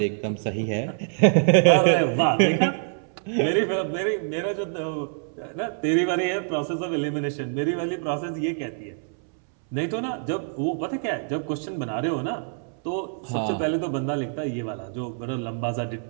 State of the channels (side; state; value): left; silent; 61 dB below the other